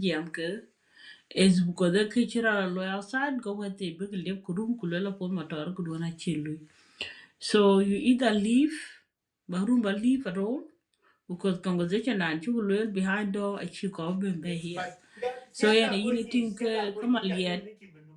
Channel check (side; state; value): both; identical; correlation 1.00